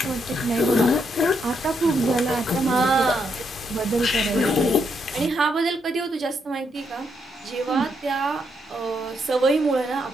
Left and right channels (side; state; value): both; normal; correlation 0.77